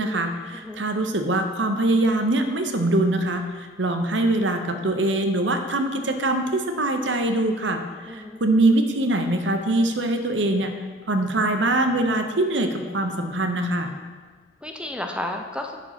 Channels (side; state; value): both; normal; correlation 0.50